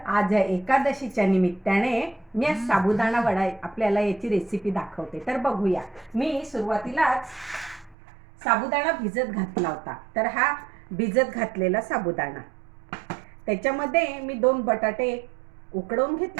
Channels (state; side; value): drops out; left; at 8.0 s